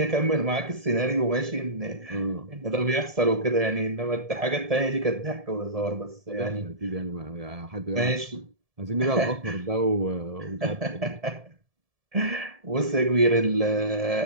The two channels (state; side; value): late; left; 1.7 ms